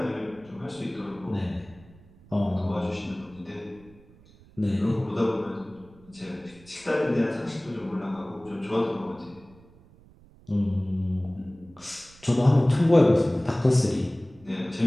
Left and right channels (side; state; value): right; noise; rumble, 25 dB below the sound